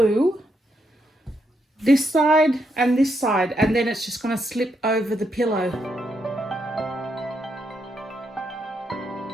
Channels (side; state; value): both; normal; correlation 0.79